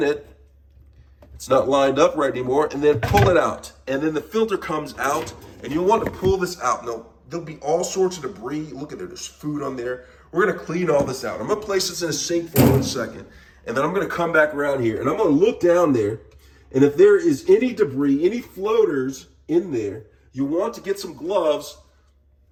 it. It's not lined up right anymore, and then pull it out. And then the filter comes out, and you'll want to pull this out. Now, there'll be all sorts of debris. Look at it, there's food on there. We're gonna clean all this out. I'm gonna place this in a sink for 1 second, and then I'm gonna come back around here, and I'm gonna look down there, and if there is any debris, any floaters in there, you want to get some gloves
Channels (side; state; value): both; identical; correlation 1.00